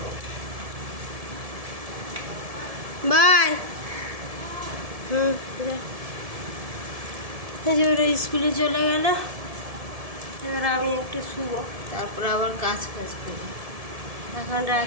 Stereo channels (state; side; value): late; left; 1.7 ms